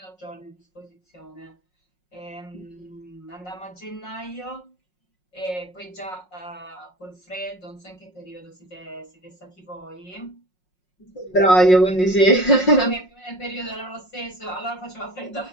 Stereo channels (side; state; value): right; late; 5.5 ms